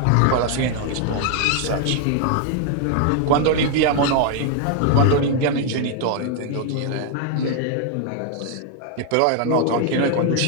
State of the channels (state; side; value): different; both; correlation 0.00